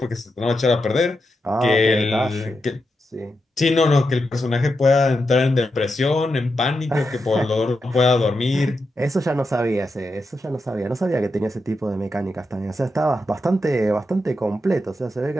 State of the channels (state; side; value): normal; both; correlation 0.86